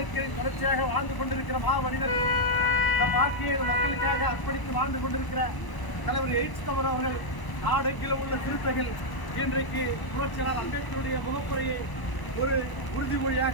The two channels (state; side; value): late; right; 1.0 ms